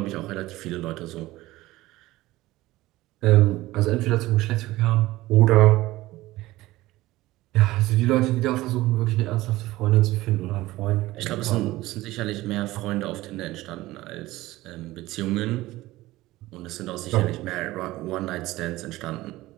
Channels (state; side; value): quieter; left; 17.8 dB